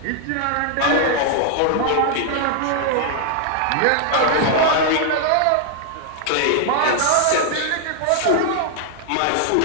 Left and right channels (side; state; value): both; different; correlation 0.00